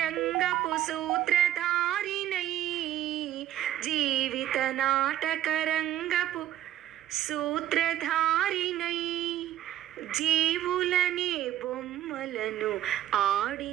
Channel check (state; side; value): quieter; left; 12.6 dB